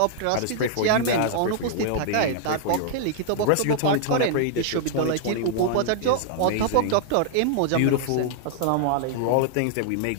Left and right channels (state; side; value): different; both; correlation -0.01